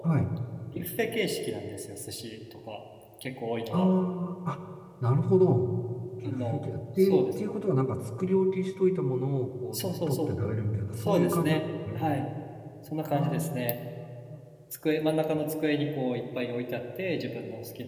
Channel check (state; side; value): identical; both; correlation 1.00